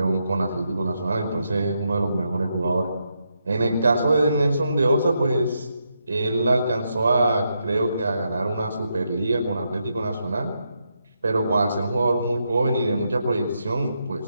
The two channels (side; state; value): both; inverted; correlation -0.82